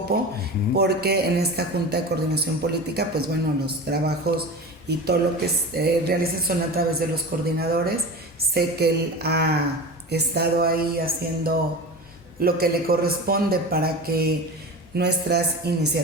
porque en esta Junta de Coordinación Política, pues bueno, los trabajos y todo lo que realizan son a través de los coordinadores. Sé que él ha estado ahí haciendo lo que le corresponde para que nuestras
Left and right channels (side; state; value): both; normal; correlation 0.31